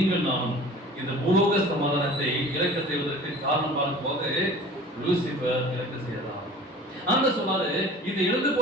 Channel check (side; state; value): both; normal; correlation 0.43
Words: நானும் இந்த பூலோக சமாதானத்தை இழக்க செய்வதற்கு காரணம் பார்க்கும்போது லூசிபர் இழக்க செய்யலாம். அந்த சொல்லாரு, இந்த இழந்து